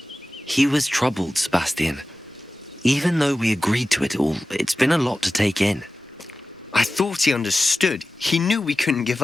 He was troubled, Sebastian. Even though we agreed to it all, it's been a lot to take in. I thought he understood. He knew we couldn't give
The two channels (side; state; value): both; normal; correlation 0.95